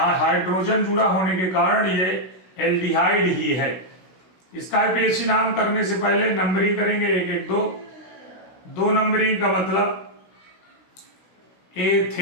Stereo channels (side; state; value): right; late; 16 ms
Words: हाइड्रोजन जुड़ा होने के कारण ये एल्डिहाइड ही है। इसका IUPAC नाम करने से पहले नंबरिंग करेंगे, 1 1 2। 2 नंबरिंग का मतलब